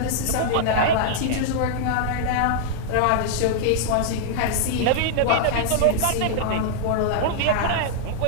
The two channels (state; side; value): different; both; correlation -0.01